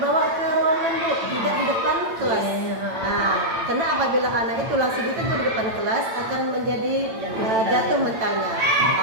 ke ruangan Bu, tidak di depan kelas. Karena apabila anak itu langsung ditegur di depan kelas akan menjadi jatuh mentalnya.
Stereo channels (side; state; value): left; late; 8.9 ms